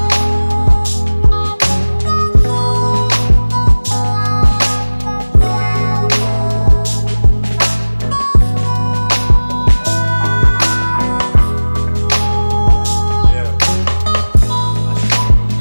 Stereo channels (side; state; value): both; inverted; correlation -1.00